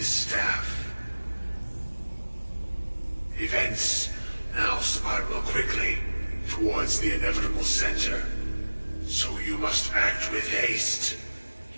staff. Events now spiral quickly towards the inevitable center, so you must act with haste.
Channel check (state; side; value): inverted; both; correlation -1.00